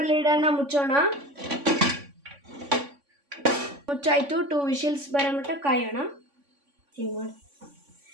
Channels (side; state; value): left; late; 3.5 ms